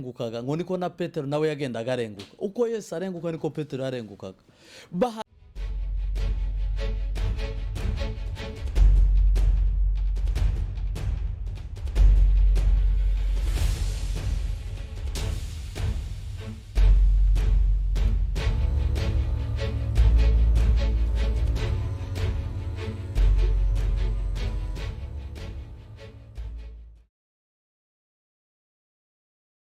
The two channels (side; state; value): both; identical; correlation 1.00